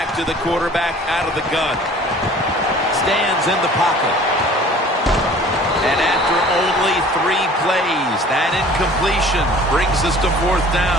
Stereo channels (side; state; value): both; normal; correlation 0.48